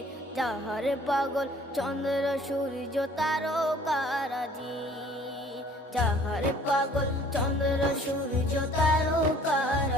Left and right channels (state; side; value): normal; both; correlation 0.54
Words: যাহার পাগল চন্দ্র সূর্য তারকারাজি, যাহার পাগল চন্দ্র সূর্য